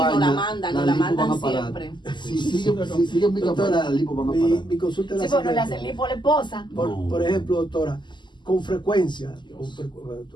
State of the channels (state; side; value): late; right; 0.22 ms